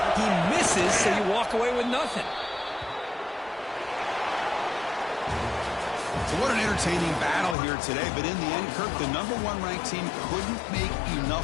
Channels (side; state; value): right; drops out; at 7.6 s